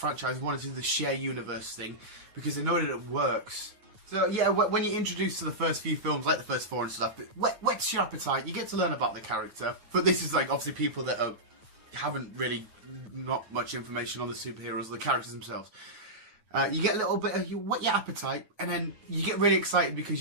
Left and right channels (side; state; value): left; late; 9.3 ms